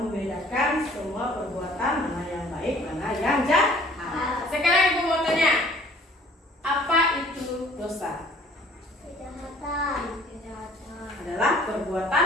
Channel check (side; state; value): both; normal; correlation 0.54